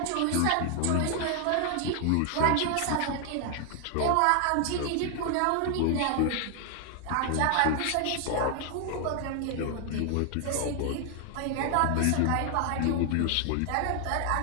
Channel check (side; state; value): both; different; correlation 0.00